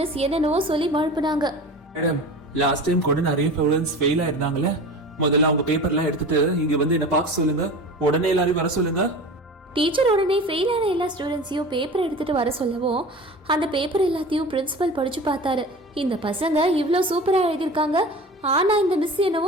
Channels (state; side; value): normal; both; correlation 0.35